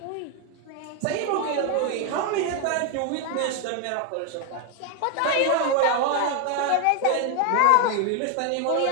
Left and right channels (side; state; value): both; different; correlation 0.01